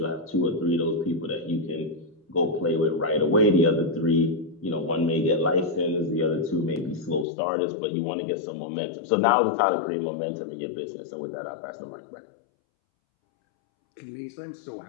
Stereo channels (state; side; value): drops out; right; at 7.2 s